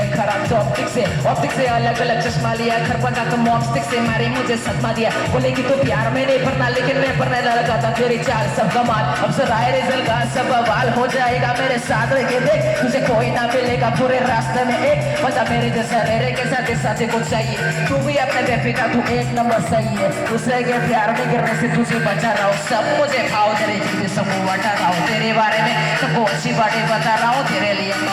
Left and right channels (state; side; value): identical; both; correlation 1.00